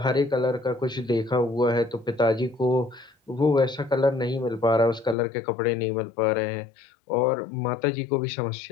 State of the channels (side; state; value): right; drops out; at 5.2 s